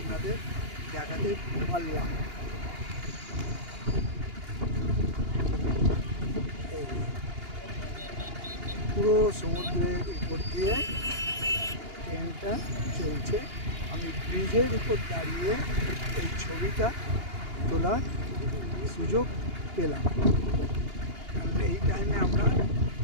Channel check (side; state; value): left; late; 2.8 ms